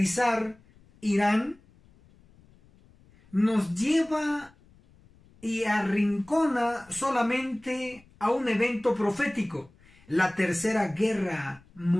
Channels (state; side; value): noise; left; rumble, 28 dB below the sound